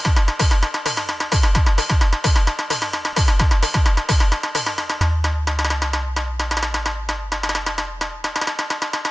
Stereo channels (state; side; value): normal; both; correlation 0.96